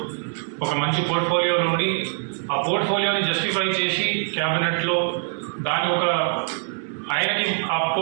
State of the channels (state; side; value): silent; left; 63 dB below the other